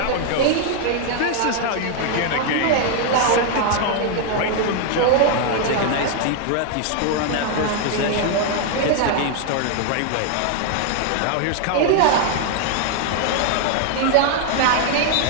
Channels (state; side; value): different; both; correlation 0.00